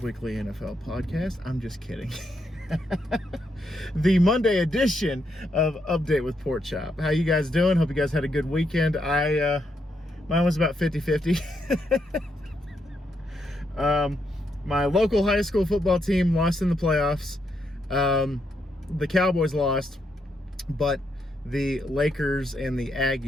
Weekly NFL Podcast. I'm just kidding. The Monday edition of Update with Pork Chop. How you guys doing? Hope you guys had a good weekend. Mine was about 50-50. My local high school football team lost in the playoffs. The Cowboys lost, but the Lakers and the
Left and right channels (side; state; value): both; normal; correlation 0.79